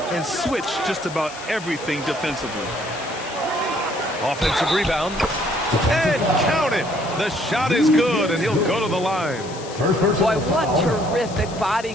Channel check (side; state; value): left; noise; hiss, 16 dB below the sound